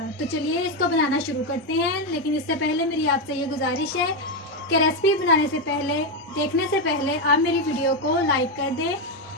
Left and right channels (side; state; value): both; normal; correlation 0.07